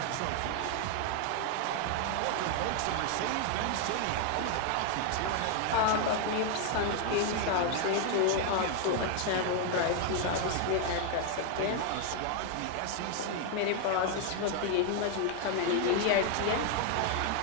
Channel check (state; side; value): different; both; correlation 0.01